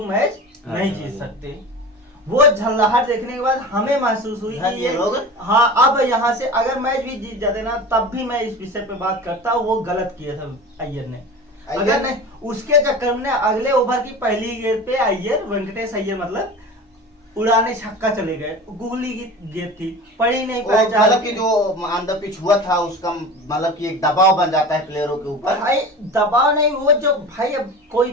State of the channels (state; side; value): normal; both; correlation 0.34